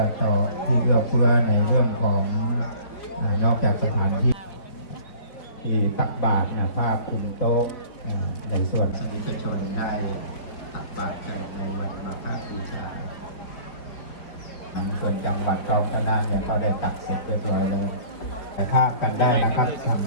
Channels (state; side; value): late; right; 4.8 ms